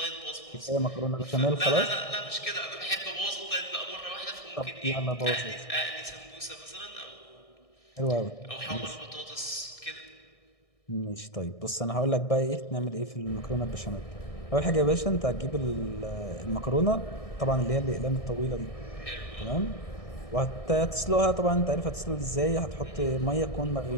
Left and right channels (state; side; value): late; right; 1.6 ms